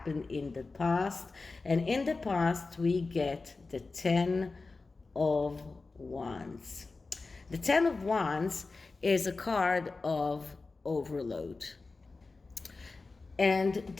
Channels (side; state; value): right; quieter; 3.8 dB